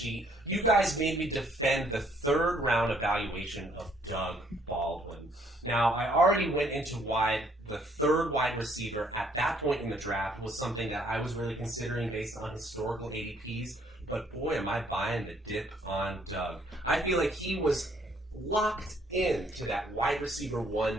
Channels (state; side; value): normal; both; correlation 0.65